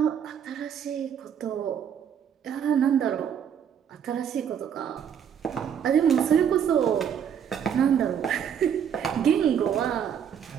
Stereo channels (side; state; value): left; quieter; 8.3 dB